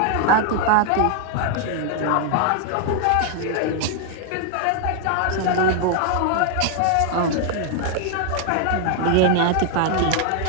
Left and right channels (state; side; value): different; both; correlation 0.00